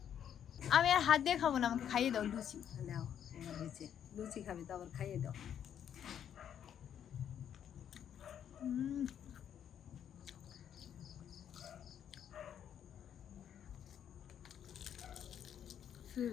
আমি আর হাত দিয়ে খাবো না, আমাকে খাইয়ে দাও লুচি। দাও, হয়েছে। লুচি খাবে তো আবার খাইয়ে দাও।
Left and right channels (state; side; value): quieter; right; 9.2 dB